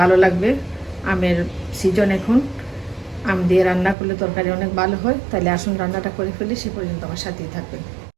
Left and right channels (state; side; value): drops out; left; at 4.0 s